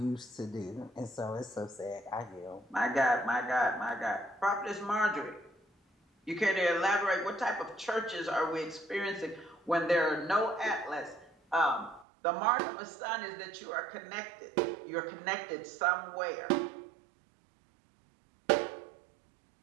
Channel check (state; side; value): drops out; left; at 12.1 s